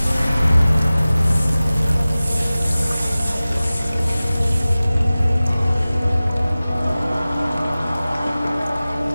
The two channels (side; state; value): both; inverted; correlation -0.97